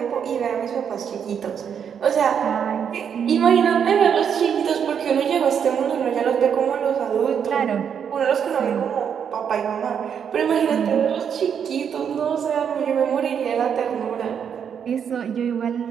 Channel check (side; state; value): left; quieter; 7.7 dB